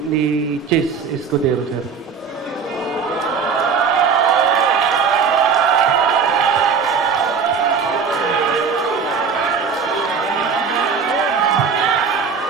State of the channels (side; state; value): left; quieter; 5.8 dB